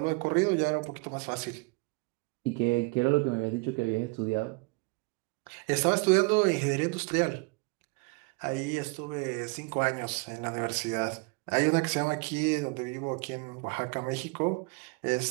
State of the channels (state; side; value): quieter; left; 28.3 dB